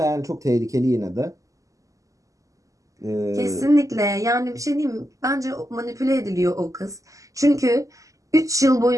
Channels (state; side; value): late; left; 0.16 ms